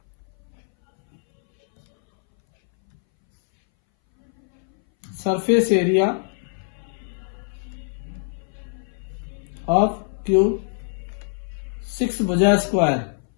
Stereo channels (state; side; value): silent; right; 61 dB below the other